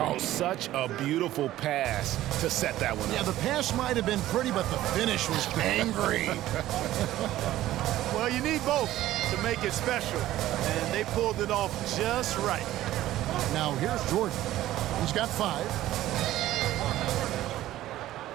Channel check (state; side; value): quieter; left; 14.5 dB